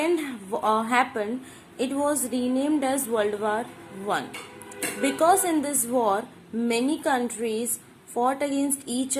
happened, it was renamed as World War I. Because in this war, many countries fought against each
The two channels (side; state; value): both; identical; correlation 1.00